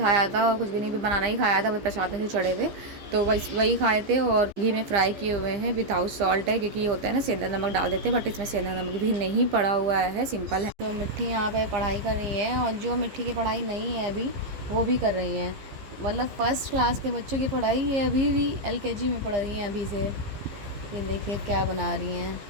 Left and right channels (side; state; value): left; late; 15 ms